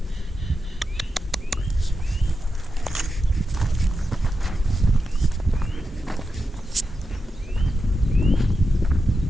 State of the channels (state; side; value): normal; both; correlation 0.89